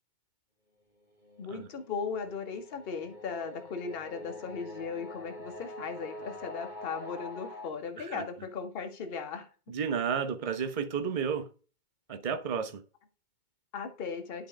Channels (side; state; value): right; late; 2.2 ms